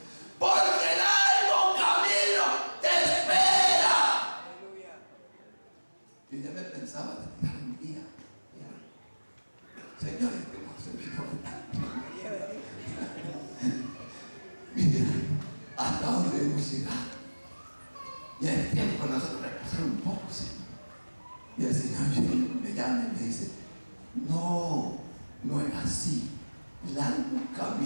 Porque el largo camino te espera. Yo ya me pensaba de tirar un día. Señores, que hemos servido tanto. Mira hasta dónde hemos llegado. Y es tiempo de nosotros repasar un poco, Señor. Y el Señor me llama y me dice: no, no es así. Largo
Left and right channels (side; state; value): both; inverted; correlation -1.00